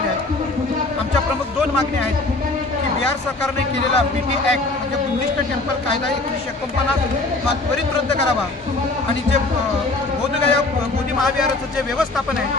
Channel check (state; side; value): quieter; right; 3.1 dB